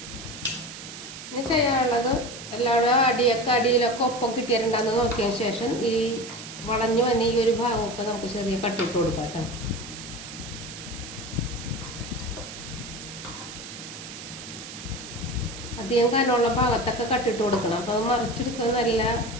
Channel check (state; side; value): noise; right; hiss, 12 dB below the sound